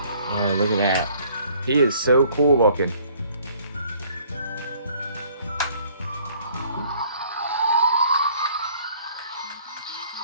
Yeah, look at that. He is so cool looking.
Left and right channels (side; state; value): both; inverted; correlation -0.58